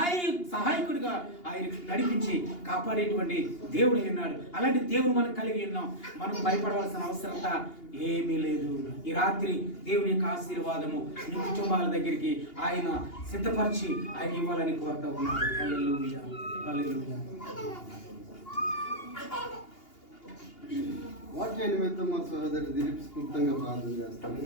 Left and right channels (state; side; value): late; right; 2.8 ms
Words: ఆయన నడిపించి కాపాడేటువంటి దేవుడు ఉన్నాడు. అలాంటి దేవుడు మనం కలిగి ఉన్నాం. మనం భయపడవలసిన అవసరత ఏమీ లేదు. ఈ రాత్రి దేవుని యొక్క ఆశీర్వాదము మీ కుటుంబాల దగ్గరికి ఆయన సిద్ధపరిచి ఆయన ఇవ్వాలని కోరుతా ఉన్నాడు. హల్లెలూయా, హల్లెలూయా. వాక్య నిమిత్తం మా సహోదరు దిలీప్ స్ఫూర్తంగా ప్రార్థన చేస్తాను.